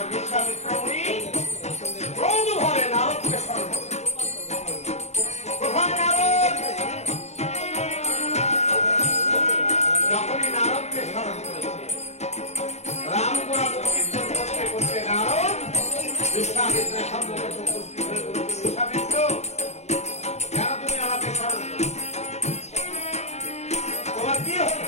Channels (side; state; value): right; late; 0.32 ms